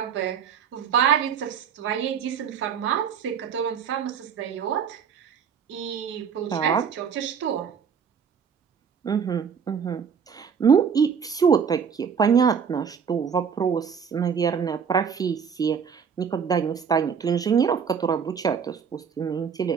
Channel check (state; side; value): quieter; left; 6.9 dB